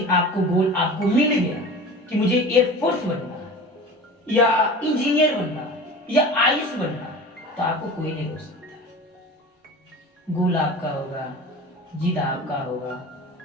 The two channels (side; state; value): both; normal; correlation 0.36